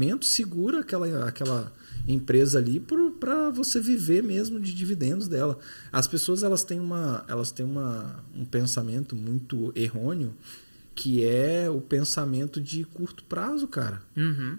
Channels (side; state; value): both; inverted; correlation -1.00